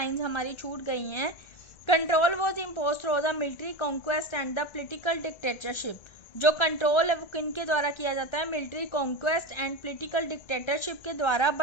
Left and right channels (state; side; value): late; right; 1.8 ms